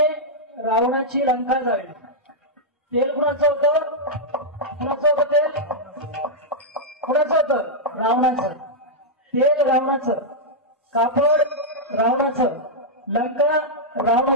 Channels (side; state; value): both; normal; correlation -0.06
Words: रावणाची लंका जाळली. तेल कुणाचं होतं? कुणाचं होतं तेल? कुणाचं होतं? रावणाचं. तेल रावणाचं, कापड रावणाचं, लंका